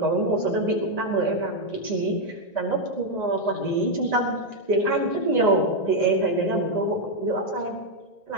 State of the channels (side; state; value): right; late; 1.9 ms